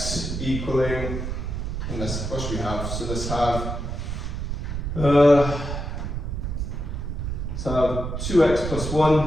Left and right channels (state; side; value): noise; right; rumble, 4 dB below the sound